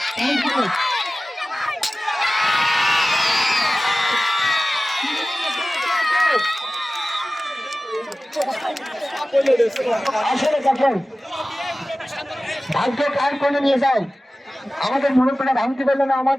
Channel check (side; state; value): both; normal; correlation 0.96